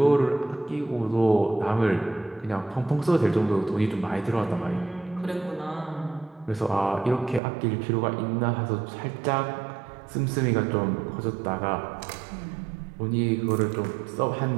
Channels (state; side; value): drops out; left; at 7.4 s